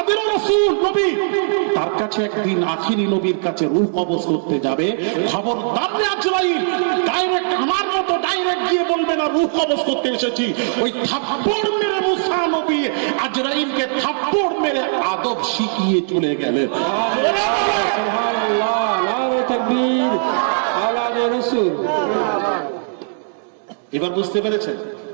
রাসূল নবী, তার কাছে একদিন আখিরি নবীর কাছে রূহ কবজ করতে যাবে। খবরদার রে আজরাইল, ডাইরেক্ট আমার মতো ডাইরেক্ট গিয়ে বলবে না রূহ কবজ করতে এসেছি। ওই থাপ্পড় মেরে মুসা নবী আজরাইলকে থাপ্পড় মেরে আদব শিখিয়ে চলে গেলেন। সুবহানাল্লাহ, নারে তাকবীর, আওলাদে রাসূল। এবার বুঝতে পেরেছেন?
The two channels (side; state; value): left; silent; digital silence